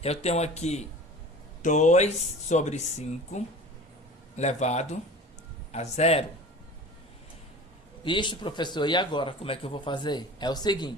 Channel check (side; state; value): both; normal; correlation 0.39